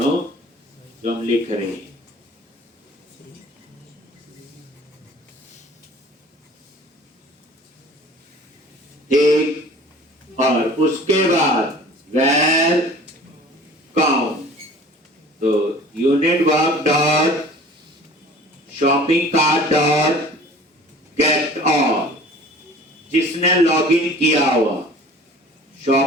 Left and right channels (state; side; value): normal; both; correlation 0.46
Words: जो हम लिख रहे हैं। ठीक, और उसके बाद where count, तो unit work dot shopping cart dot get all, जिसने लॉगिन किया हुआ,